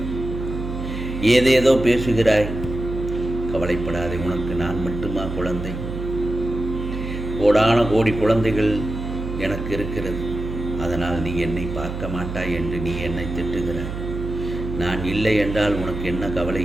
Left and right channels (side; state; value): right; noise; hum, 6 dB below the sound